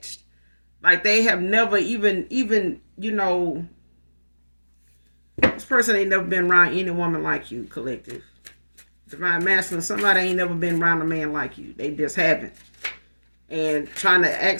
Like they have never even this person ain't never been around any woman like you, collective. Divine masculine, somebody ain't never been around a man like you. They just haven't. And trying to ask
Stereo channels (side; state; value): both; inverted; correlation -1.00